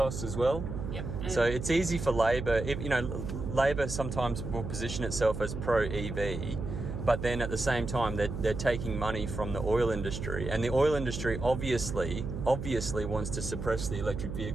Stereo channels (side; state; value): right; noise; hum, 6 dB below the sound